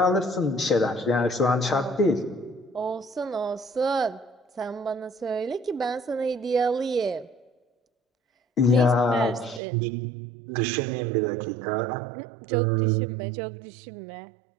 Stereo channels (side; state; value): left; drops out; at 9.6 s